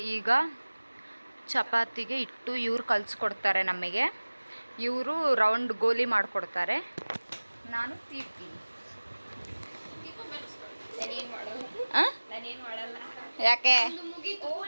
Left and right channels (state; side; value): inverted; both; correlation -1.00